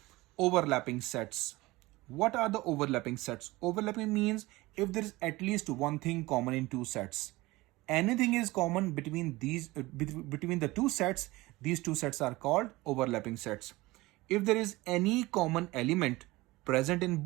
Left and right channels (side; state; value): left; quieter; 20.4 dB